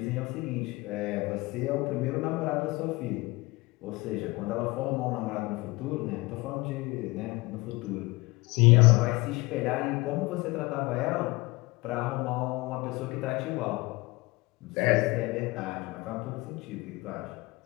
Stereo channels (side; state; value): right; quieter; 23.0 dB